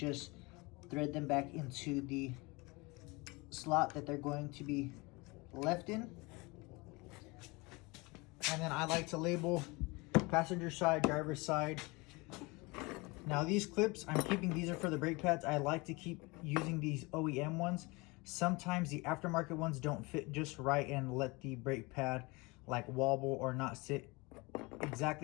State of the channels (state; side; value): quieter; right; 25.5 dB